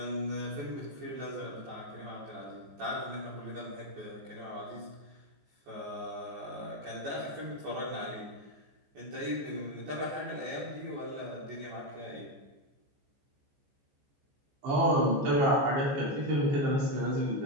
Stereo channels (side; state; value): left; late; 14 ms